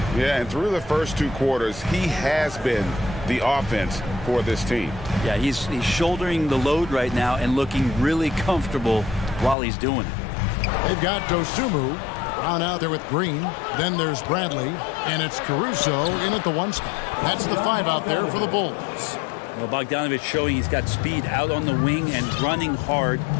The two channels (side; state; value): right; drops out; at 9.6 s